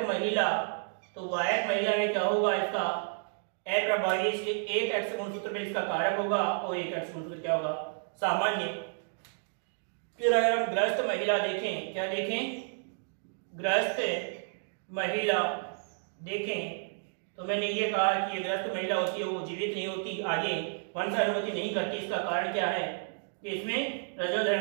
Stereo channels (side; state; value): left; silent; digital silence